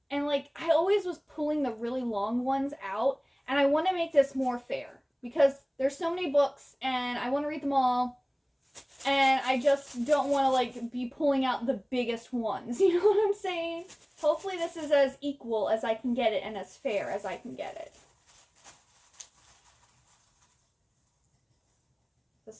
And, like, I always was pulling the really long ones out. And I want to make this more fair. Because there's so many books and I want to read them all. And I just don't want to, like, be pulling out the biggest ones. You know what I'm saying? Hopefully this is as equal as I can get it and as fair as I can get it. So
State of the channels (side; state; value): both; identical; correlation 1.00